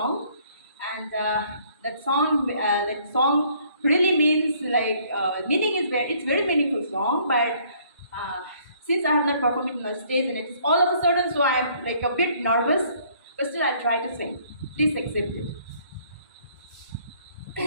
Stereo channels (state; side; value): inverted; both; correlation -0.62